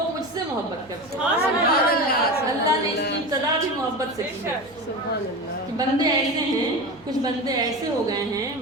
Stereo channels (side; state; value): right; noise; hum, 27 dB below the sound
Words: مجھ سے محبت کرتے ہیں۔ سبحان اللہ، اللہ نے اس کی ابتدا بھی محبت سے کی ہے سبحان اللہ، کہ بندے ایسے ہیں، کچھ بندے ایسے ہو گئے ہیں